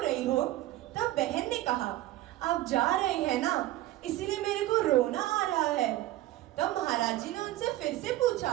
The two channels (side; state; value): left; quieter; 15.6 dB